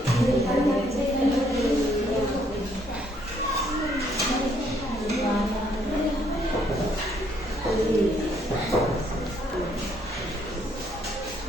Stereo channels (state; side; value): normal; both; correlation 0.68